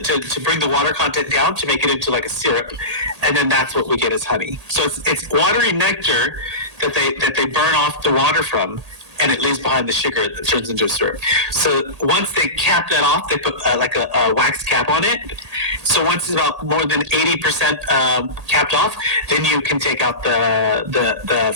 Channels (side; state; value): left; late; 1.8 ms